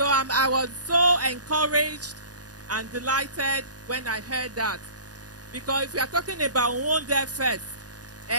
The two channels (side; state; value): left; late; 0.68 ms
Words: I was so encouraged and delighted when I heard that. Because if we are talking about Uhunmwode First,